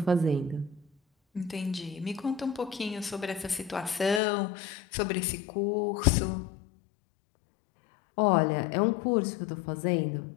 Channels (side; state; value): right; drops out; at 4.2 s